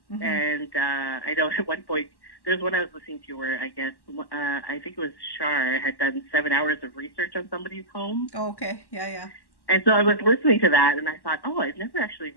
and I know at one point, there's one I was listening to where I guess, I think it was Shar had done 7 hours of research on somebody's home. Oh, okay. Yeah. And so I was listening to that, and I thought, I've never actually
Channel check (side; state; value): right; late; 1.1 ms